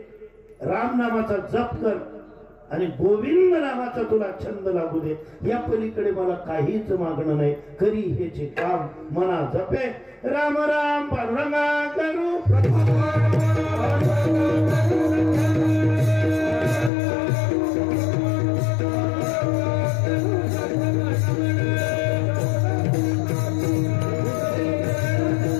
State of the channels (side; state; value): right; drops out; at 16.9 s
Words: राम नामाचा जप कर आणि गोविंद नामाचा तुला छंद लागू दे. या पलीकडे मला काहीच मागणं नाही. करी हेचे काम मना जपे राम राम पांडुरंगा करू.